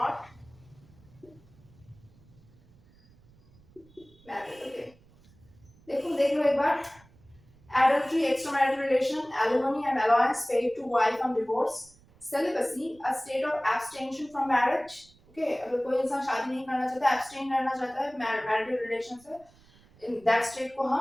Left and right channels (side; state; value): right; noise; rumble, 28 dB below the sound